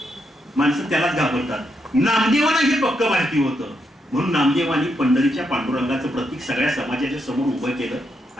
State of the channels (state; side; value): normal; both; correlation 0.80